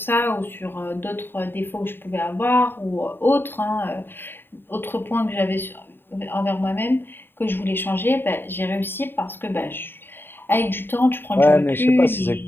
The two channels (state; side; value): late; right; 0.10 ms